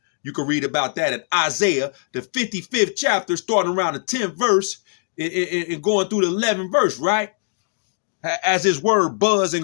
can read about that in Isaiah, the 55th chapter, starting around the 10th verse and going through the 11th verse, right? As his word buds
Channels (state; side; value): silent; right; digital silence